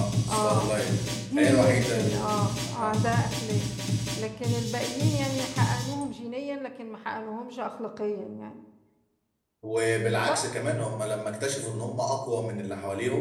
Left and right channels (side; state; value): both; identical; correlation 1.00